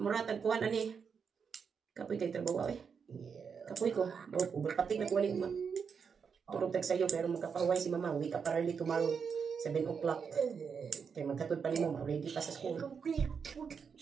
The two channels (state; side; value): quieter; left; 6.3 dB